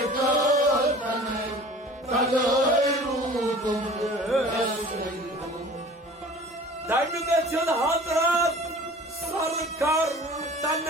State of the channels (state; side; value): normal; both; correlation 0.44